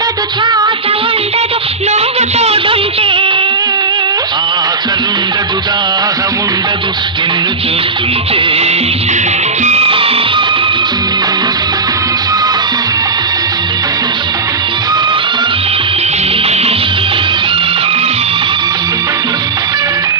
శ్వాస ఉండదు నువ్వు తోడుంటే. ఆకలుండదు దాహముండదు నిన్ను చూస్తుంటే.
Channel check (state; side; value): quieter; left; 4.1 dB